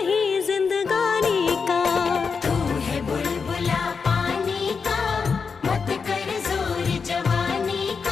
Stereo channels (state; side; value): quieter; right; 5.4 dB